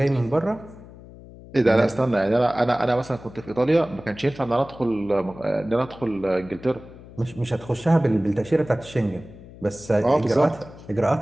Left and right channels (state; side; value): noise; left; hum, 18 dB below the sound